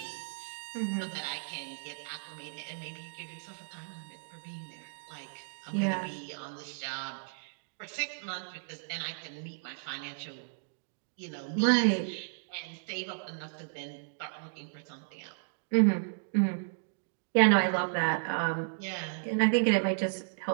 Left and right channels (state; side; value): silent; left; digital silence